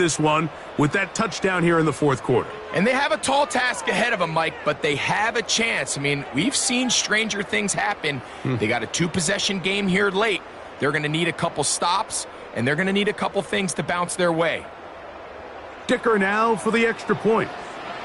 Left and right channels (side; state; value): both; identical; correlation 1.00